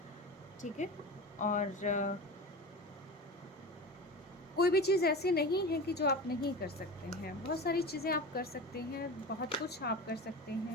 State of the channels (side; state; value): both; normal; correlation 0.30